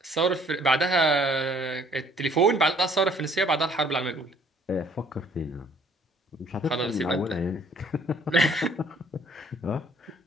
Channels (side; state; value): both; normal; correlation 0.59